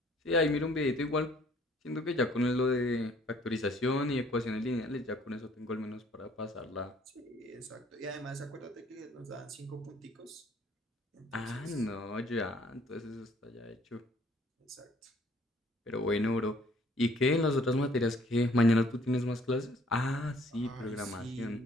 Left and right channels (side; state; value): both; normal; correlation 0.60